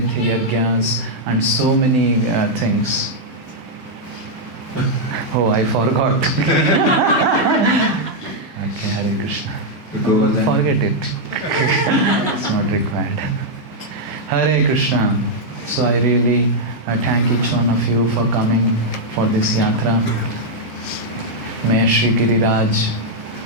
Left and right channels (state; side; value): normal; both; correlation -0.03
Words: Yajnas and so many things. Oh, I forgot. Okay, Hare Krishna. Govardhan. Forget it. It's not required. Hare Krishna. So I really thank each one of you for coming for this yatra. May Shri Giriraj